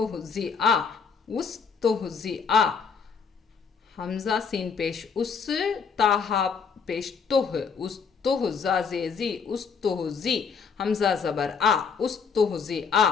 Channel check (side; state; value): right; quieter; 5.8 dB